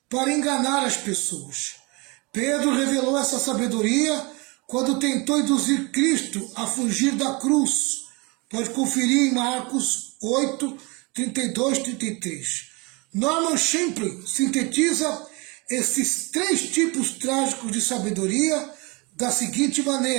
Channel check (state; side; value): quieter; left; 27.8 dB